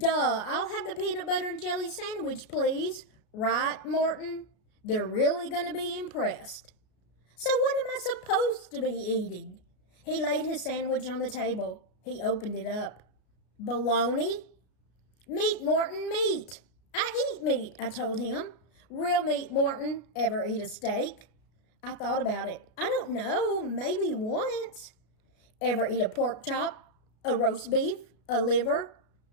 I'll have the peanut butter and jelly sandwich, please. Right, Morton? They're really going to be impressed. So what am I supposed to be eating? He laid his sandwich on the table. He opened it up. Bologna? Meat, Morton, meat. I eat meat, I told him. Real meat, Morton. Ever eat a steak? I thought about it. I don't know, maybe once. Ever eat a pork chop? A roast beef? A liver?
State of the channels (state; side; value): late; right; 33 ms